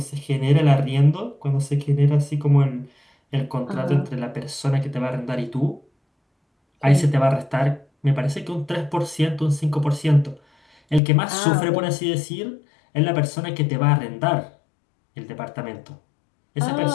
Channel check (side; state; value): right; drops out; at 11.0 s